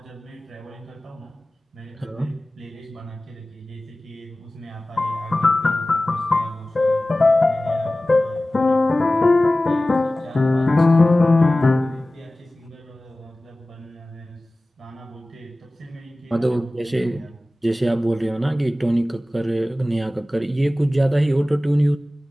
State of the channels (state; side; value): normal; both; correlation 0.97